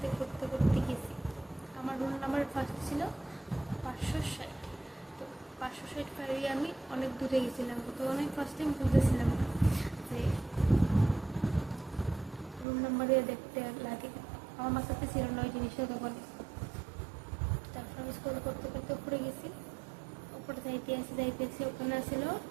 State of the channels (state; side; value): drops out; left; at 12.7 s